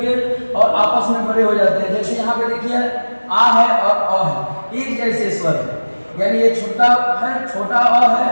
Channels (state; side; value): inverted; both; correlation -1.00